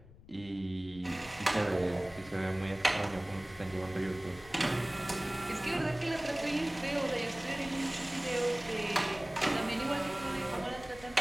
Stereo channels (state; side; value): noise; left; rumble, 20 dB below the sound